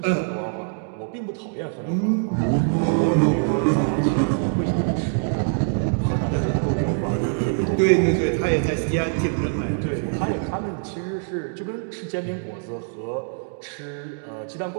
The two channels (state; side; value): silent; left; digital silence